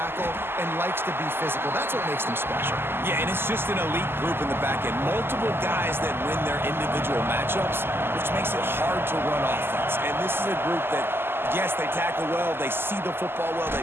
and likes to be physical. That's what makes them special. Yeah, and it's just an elite group in the back end. Multiple guys that win their individual matchups, which makes it hard to run offense. And this is a group that, yes, they tackle well, they see the football well,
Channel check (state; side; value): late; left; 0.11 ms